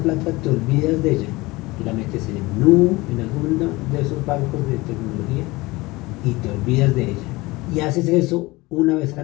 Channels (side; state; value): right; quieter; 21.6 dB